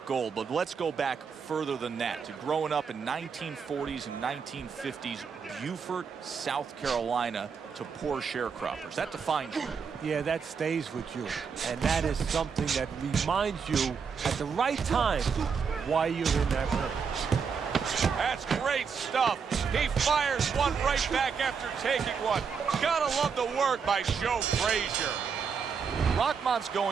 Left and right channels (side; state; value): left; quieter; 6.1 dB